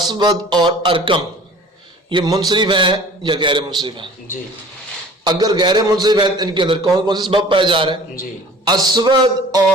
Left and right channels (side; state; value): both; normal; correlation 0.46